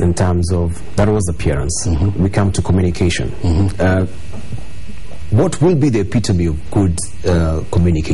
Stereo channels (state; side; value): identical; both; correlation 1.00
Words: in terms of, that was appearance. We come to communication. What will be the epitome of good